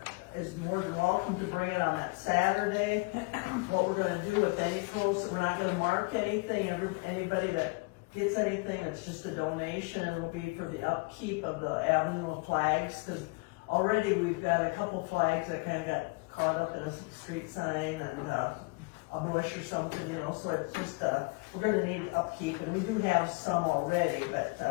is more than welcome to bring it on that Saturday. What we're gonna do with any posts, we're not gonna mark anything. Anybody that gets anything, it's just a donation. It will be for the upkeep of the Avenue of Flags, because already we've got a couple flags that kind of got caught up in a street sign and a bush or something, you know, so it's just, we're gonna need upkeep, and we do have some already, but,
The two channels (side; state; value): right; quieter; 28.1 dB